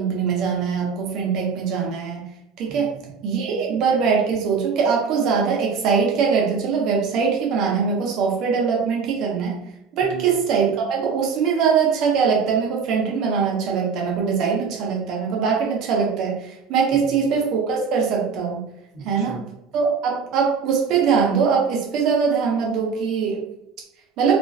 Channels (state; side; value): quieter; left; 5.7 dB